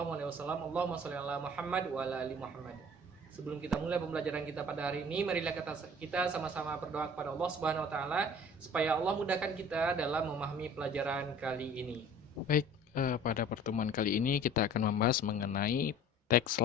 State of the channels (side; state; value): both; normal; correlation 0.47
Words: sholli ala Muhammad wa ala ali Muhammad. Sebelum kita mulai pembelajaran kita pada hari ini, marilah kita sama-sama berdoa kepada Allah Subhanahu wa taala supaya Allah mudahkan kita dalam memahami pelajaran kali ini. Baik, pada pertemuan kali ini kita akan membahas mengenai text